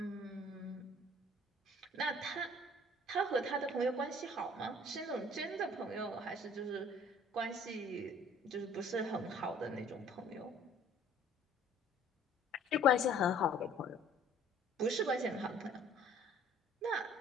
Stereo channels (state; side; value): normal; both; correlation 0.54